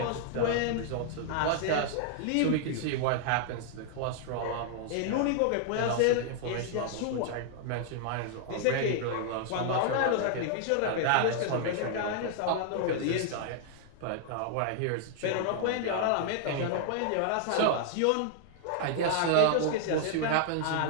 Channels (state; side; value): different; both; correlation -0.01